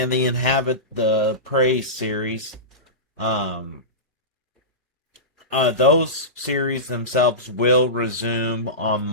the Praise series, um, those series themselves will resume on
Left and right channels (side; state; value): both; normal; correlation -0.19